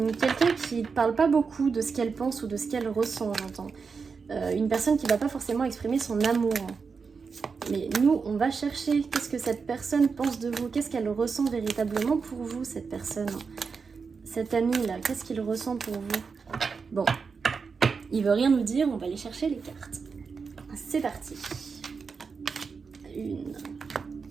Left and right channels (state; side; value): quieter; left; 5.2 dB